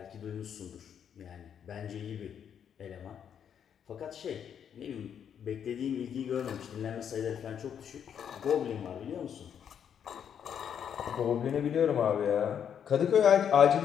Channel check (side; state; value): right; quieter; 8.4 dB